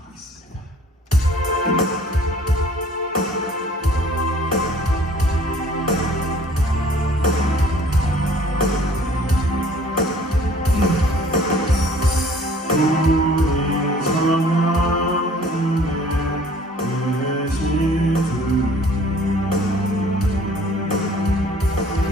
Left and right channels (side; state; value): both; normal; correlation 0.54